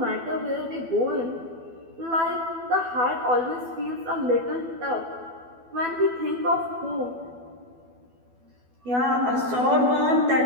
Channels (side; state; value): left; late; 12 ms